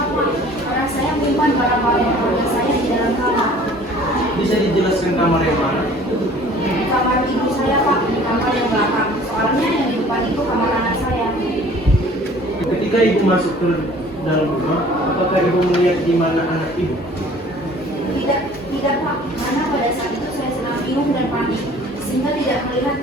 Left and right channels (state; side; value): normal; both; correlation 0.50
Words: karena saya menyimpan barang-barang keluarga saya di dalam kamar. Bisa dijelaskan kamar yang mana? Di kamar ibu saya Pak, di kamar yang belakang. Soalnya yang di depan itu kamar anak saya. Ketika ibu masuk ke dalam rumah, apakah ibu melihat di mana anak ibu? Tidak Pak, karena pada saat itu saya sedang bingung dan panik, sehingga tidak melihat